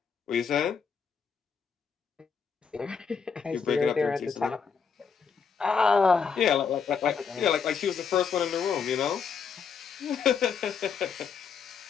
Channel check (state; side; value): quieter; right; 6.2 dB